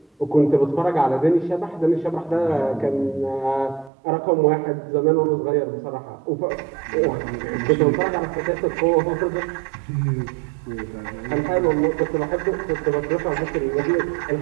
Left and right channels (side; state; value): left; drops out; at 3.9 s